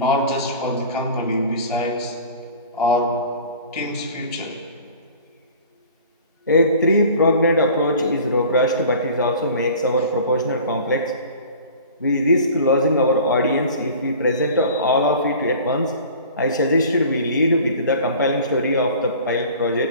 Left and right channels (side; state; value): both; inverted; correlation -0.43